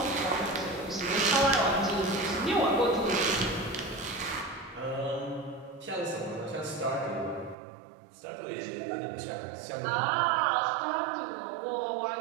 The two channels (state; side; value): drops out; left; at 7.6 s